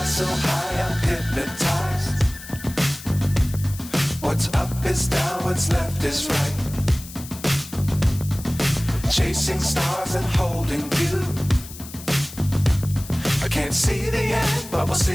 So high I'm hypnotized. What's up is down, what's left is right. Chasing stars and holding you. I can't see the end, but we'll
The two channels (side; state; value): left; noise; hiss, 15 dB below the sound